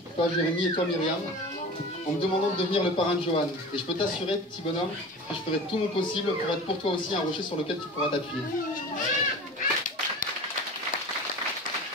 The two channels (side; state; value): both; normal; correlation 0.36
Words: toi Jérémy et toi Myriam, en me demandant de devenir le parrain de Johan. Et je peux t'assurer, petit bonhomme, que je ferai tout mon possible pour être pour toi aussi un rocher sur lequel tu pourras t'appuyer.